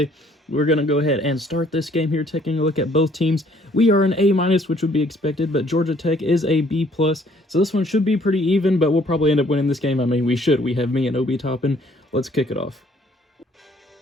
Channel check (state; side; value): normal; both; correlation 0.62